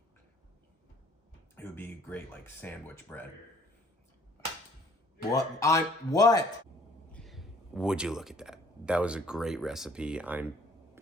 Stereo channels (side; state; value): both; normal; correlation 0.58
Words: It would be great like sandwich bread. What? Would you look at that? That was a great recipe.